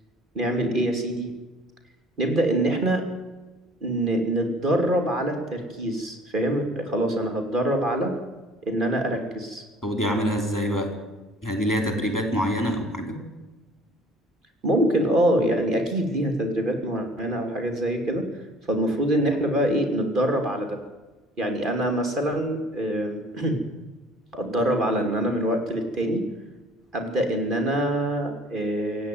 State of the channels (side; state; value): both; normal; correlation 0.52